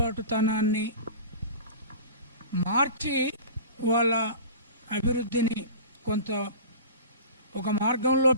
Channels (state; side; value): inverted; both; correlation -0.37